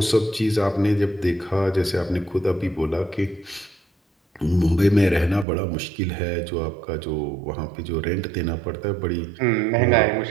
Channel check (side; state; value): left; drops out; at 5.5 s